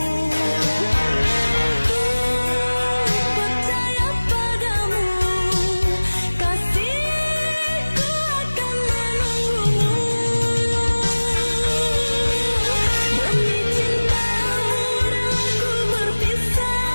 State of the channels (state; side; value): inverted; both; correlation -1.00